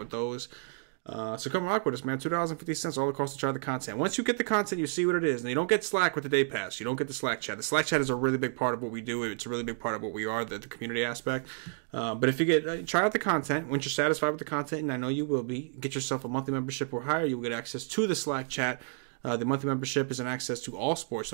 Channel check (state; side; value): silent; left; 57 dB below the other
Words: those. So come rock with us, man. $2.50 all across to try the content. Once you get the content, you see what it is. And you don't get Slack with the day pass. You don't get the Slack chat. The Slack chat is a really big part of what we do. It's a really big part of what we are, the community aspect. But if you try out the content, once you're satisfied with the content, and I know you will be, get yourself a monthly membership or higher. You'll get access to the Slack chat. The monthly membership is an access to all sports.